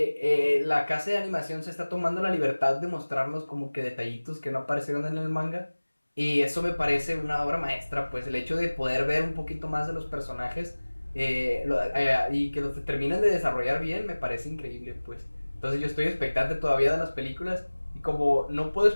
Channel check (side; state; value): both; inverted; correlation -1.00